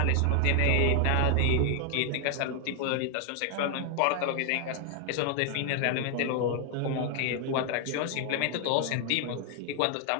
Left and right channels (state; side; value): different; both; correlation 0.00